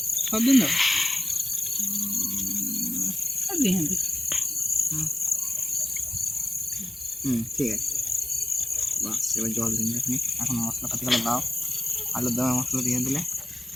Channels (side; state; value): both; normal; correlation 0.96